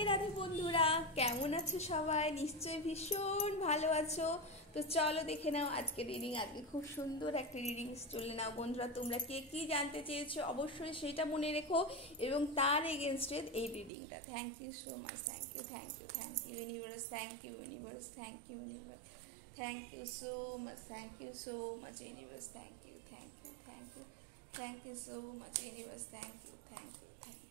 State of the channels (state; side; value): drops out; left; at 13.9 s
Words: রাধে বন্ধুরা, কেমন আছো সবাই? নিশ্চয়ই ভীষণ ভালো আছো। তো চলো দেখে নাও আজকে রিডিং। আজকে খুব সুন্দর একটা রিডিং চলে নাও বন্ধুরা। তোমরা কে কি জানতে চেয়েছো অবশ্যই সেটা মনে রেখো এবং তার এগেনস্টে এই রিডিংটা। Thank you so much, thank you, thank you, thank you universe, thank you universe, thank you universe, thank you so much, thank you so much universe, thank you, thank you, thank you, thank you so much universe, thank you, thank you, thank